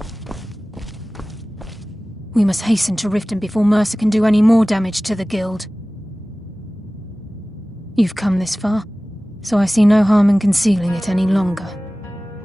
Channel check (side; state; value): both; normal; correlation 0.97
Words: We must hasten to Riften before Mercer can do any more damage to the guild. You've come this far, so I see no harm in concealing it any longer.